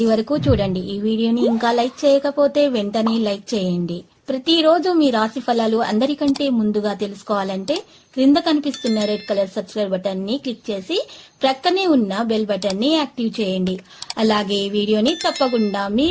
వరకు చూడండి. ఈ వీడియోని ఇంకా లైక్ చేయకపోతే వెంటనే లైక్ చేయండి. ప్రతిరోజు మీ రాశి ఫలాలు అందరికంటే ముందుగా తెలుసుకోవాలంటే క్రింద కనిపిస్తున్న రెడ్ కలర్ సబ్స్క్రైబ్ బటన్ ని క్లిక్ చేసి ప్రక్కనే ఉన్న బెల్ బటన్ ని యాక్టివ్ చేయండి. అలాగే ఈ వీడియోని తప్పకుండా మీ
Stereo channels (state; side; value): identical; both; correlation 1.00